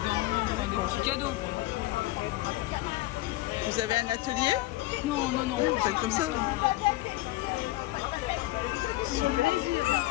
enfin, des petits cadeaux. Quoi. Vous avez un atelier? Non, non, non. Vous faites comme ça? Super.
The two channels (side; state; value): right; quieter; 18.1 dB